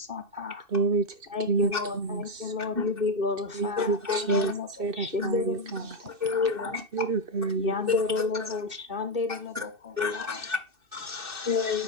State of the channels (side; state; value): left; late; 2.6 ms